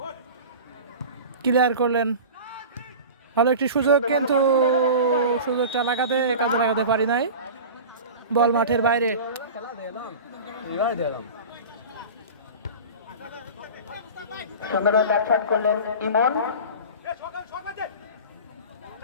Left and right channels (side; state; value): both; inverted; correlation -0.34